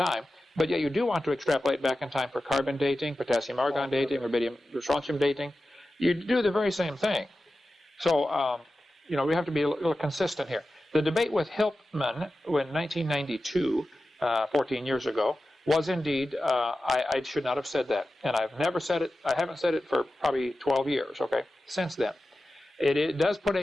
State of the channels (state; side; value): normal; both; correlation 0.94